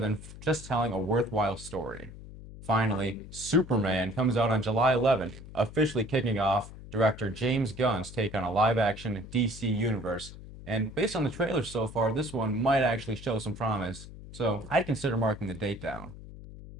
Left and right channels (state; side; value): noise; left; hum, 15 dB below the sound